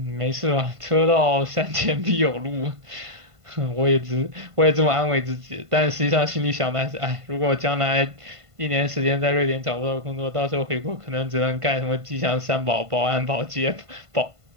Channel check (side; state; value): left; late; 1.5 ms